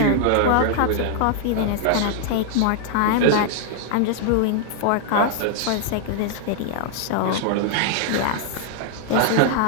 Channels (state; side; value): different; both; correlation 0.00